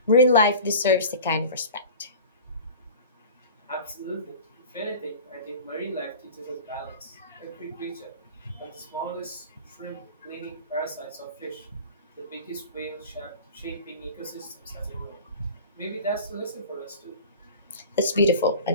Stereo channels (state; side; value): inverted; both; correlation -0.37